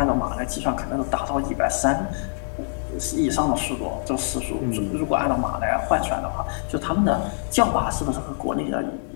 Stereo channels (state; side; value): silent; right; 62 dB below the other